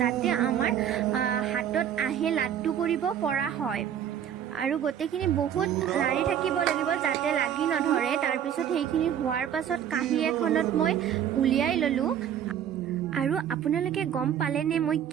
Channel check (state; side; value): quieter; left; 9.5 dB